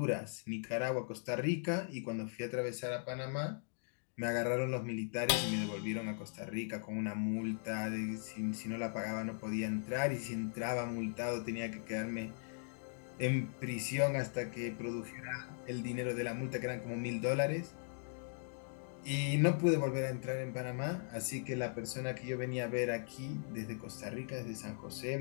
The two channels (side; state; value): right; silent; digital silence